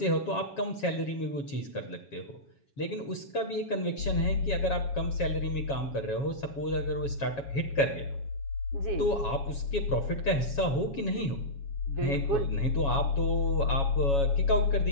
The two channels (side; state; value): right; late; 7.2 ms